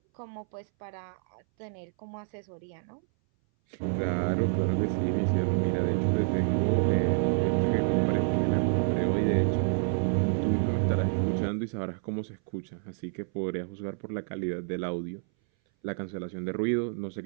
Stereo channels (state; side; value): silent; left; 59 dB below the other